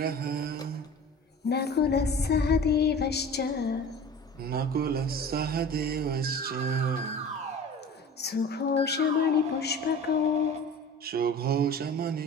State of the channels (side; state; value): both; normal; correlation 0.39